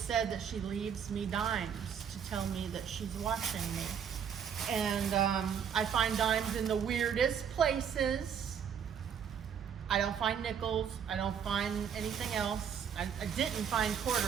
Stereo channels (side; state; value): left; quieter; 7.9 dB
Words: that she leaves me dimes to tell me that she's watching me. And I find dimes in the weirdest places. I don't find nickels. I don't find anything else. I didn't find